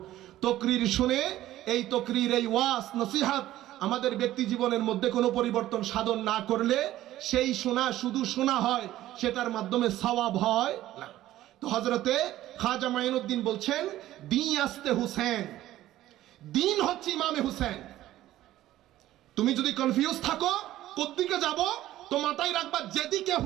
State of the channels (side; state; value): left; quieter; 14.4 dB